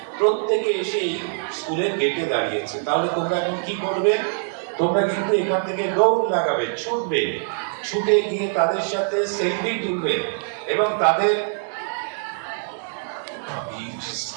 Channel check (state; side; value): silent; left; 63 dB below the other